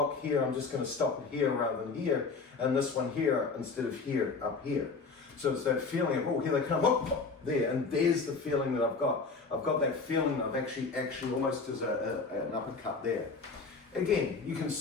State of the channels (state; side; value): quieter; right; 4.5 dB